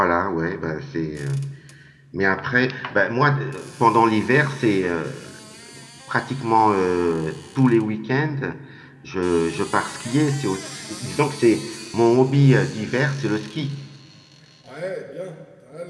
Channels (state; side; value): identical; both; correlation 1.00